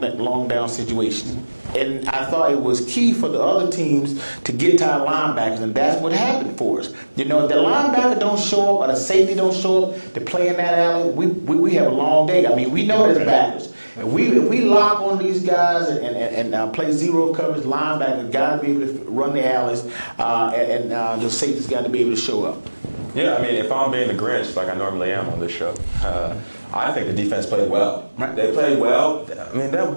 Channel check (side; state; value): both; inverted; correlation -1.00